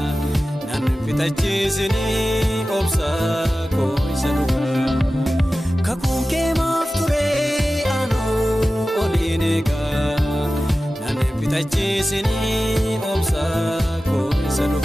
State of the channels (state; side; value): normal; both; correlation 0.95